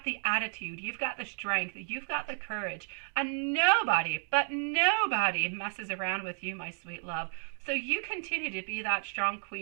the attitude. You've got the strength. You've got the courage. And nobody, but nobody messes around with you, my sweet love. So you continue to be that strong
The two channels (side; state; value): left; silent; 56 dB below the other